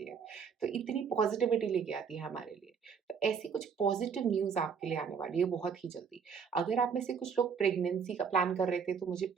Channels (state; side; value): quieter; left; 6.4 dB